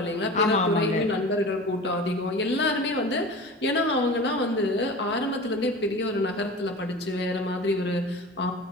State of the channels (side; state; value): both; normal; correlation 0.35